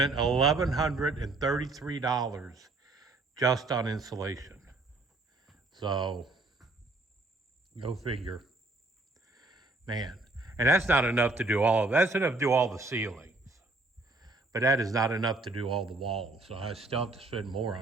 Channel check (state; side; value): quieter; left; 3.1 dB